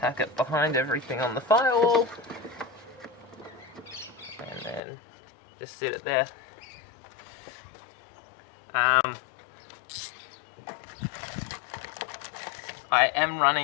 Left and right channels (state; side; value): drops out; right; at 4.8 s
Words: it behind everything on the firewall, and then just sit it there. I am